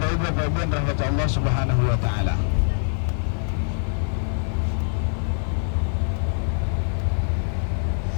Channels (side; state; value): right; silent; digital silence